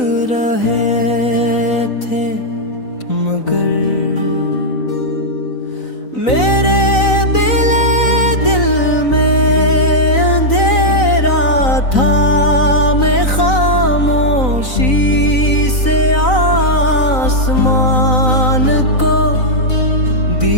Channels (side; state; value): right; late; 3.9 ms